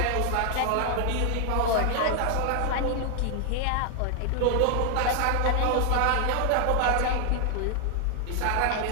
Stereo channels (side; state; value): both; different; correlation 0.00